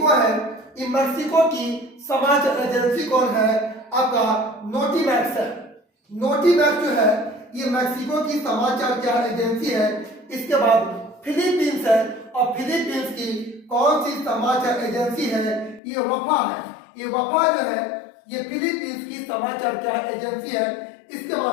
है, ये मैक्सिको की समाचार एजेंसी कौन है, आपका नोटिमैक्स है। नोटिमैक्स जो है ये मैक्सिको की समाचार क्या एजेंसी है। इसके बाद फिलीपींस है, और फिलीपींस की कौन सी समाचार एजेंसी है, ये वफा है। ये वफा जो है ये फिलीपींस की समाचार क्या एजेंसी है। इसके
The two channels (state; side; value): drops out; right; at 15.8 s